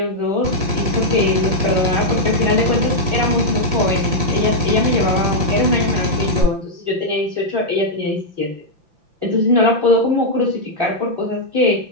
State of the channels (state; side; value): late; left; 5.6 ms